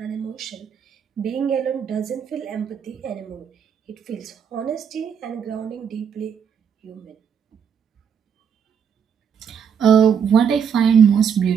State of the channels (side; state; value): left; quieter; 7.4 dB